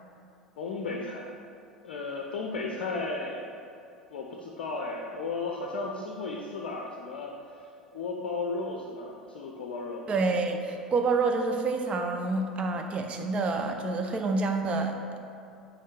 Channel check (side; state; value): both; normal; correlation 0.38